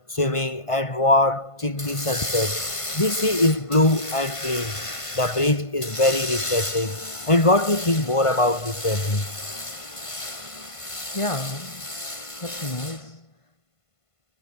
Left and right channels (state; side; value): late; right; 1.5 ms